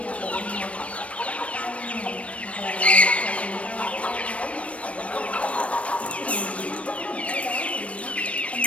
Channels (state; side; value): late; right; 0.063 ms